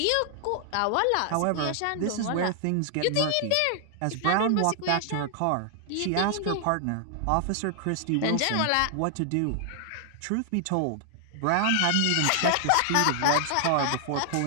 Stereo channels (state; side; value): different; both; correlation 0.00